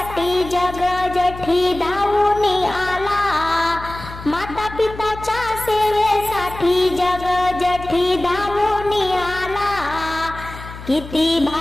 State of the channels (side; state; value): left; noise; hum, 13 dB below the sound